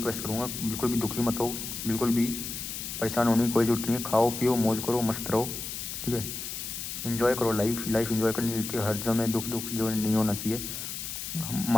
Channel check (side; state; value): left; noise; hiss, 6 dB below the sound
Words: करूँगा, बिल्कुल भी दुखी मत हो, बिल्कुल भी परेशान होने की कोई ज़रूरत नहीं है। खाओ पियो, मौज करो, मस्त रहो, ठीक है। इन्जॉय करो लाइफ इन्जॉय करनी मिलती है। हर समय दुख जो नहीं होना चाहिए।